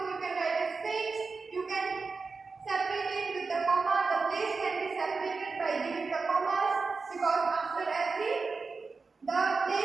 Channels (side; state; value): left; quieter; 4.4 dB